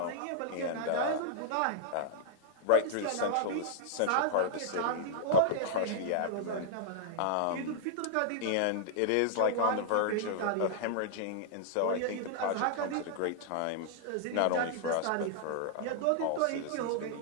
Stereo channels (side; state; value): both; different; correlation -0.01